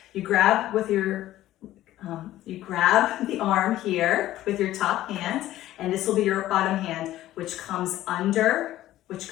You grab with your, you grab the arm here with your top hand, and this will be your bottom hand, which comes under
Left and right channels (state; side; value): quieter; right; 14.3 dB